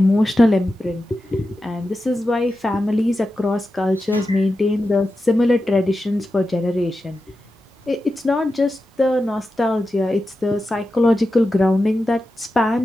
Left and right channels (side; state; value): both; normal; correlation 0.91